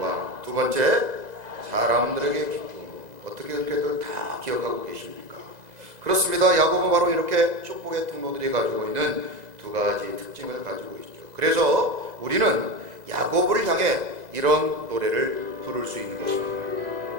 두 번째, 사람들에게 기쁨. 어떻게 그렇게들 다 기억하고 계십니까? 그렇습니다. 야곱은 바로 이렇게 축복의 통로들이 가지고 있는 두 가지 특징을 가지고 있죠. 그래서 우리는 야곱을 향해 이런 노래를 부를 수 있는 것입니다.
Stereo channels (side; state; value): left; late; 2.0 ms